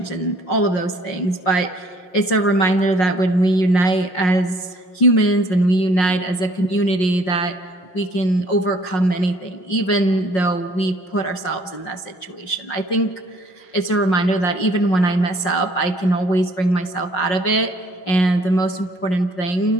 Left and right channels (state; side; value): late; right; 5.5 ms